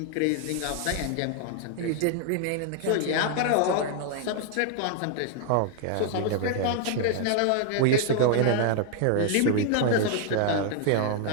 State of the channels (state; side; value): different; both; correlation 0.00